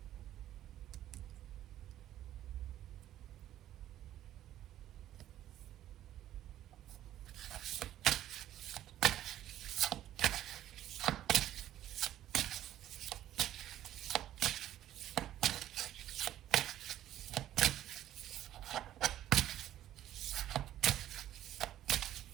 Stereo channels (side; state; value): left; quieter; 12.5 dB